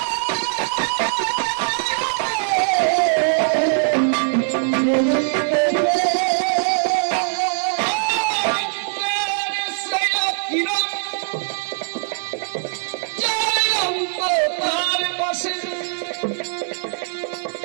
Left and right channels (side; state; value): left; silent; 65 dB below the other